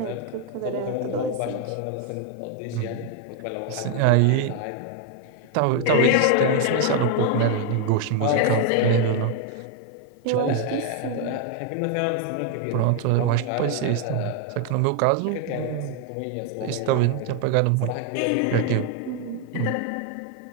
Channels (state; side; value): different; both; correlation 0.00